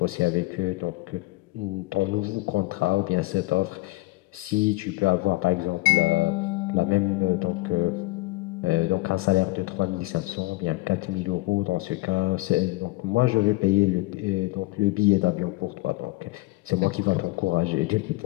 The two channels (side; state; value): right; quieter; 20.6 dB